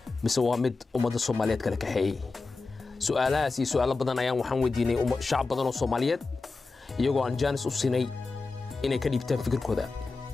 mise waa mid ummadda Soomaaliyeed kala kaxeeyay su'aalahaas iyo su'aalo badan ayaan waxaan weydiinay shacab badan oo Soomaaliyeed iyagoo aan jaanis u siinay inay ka dhiibtaan fikirkooda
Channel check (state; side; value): quieter; right; 3.9 dB